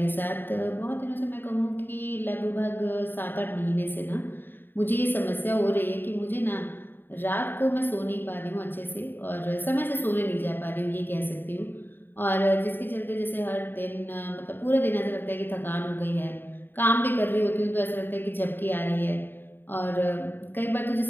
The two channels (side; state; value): right; late; 0.095 ms